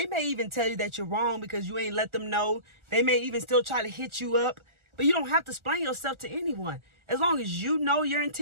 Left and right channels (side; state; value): left; late; 1.4 ms